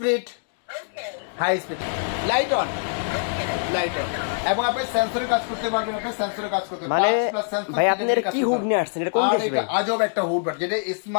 High speed. Light on. Light on. এবং আপনি সেন্সরের কাজ করতে পারবেন, আপনি সেন্সরের কাজ করতে মানে ভাই আপনি এর কি হুড নিয়ে আসছেন? এটা কোন দেশ ভাই? আজব একটা হুড, যেটা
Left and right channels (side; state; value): right; silent; digital silence